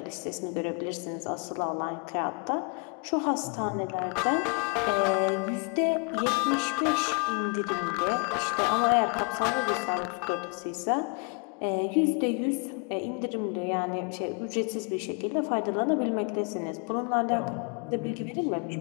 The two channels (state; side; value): quieter; right; 37.3 dB